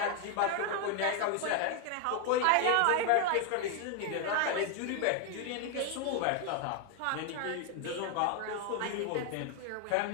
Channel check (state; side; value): different; both; correlation 0.01